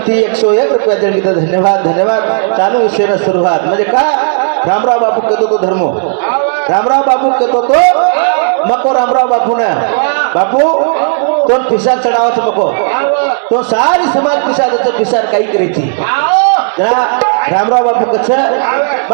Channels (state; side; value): silent; left; digital silence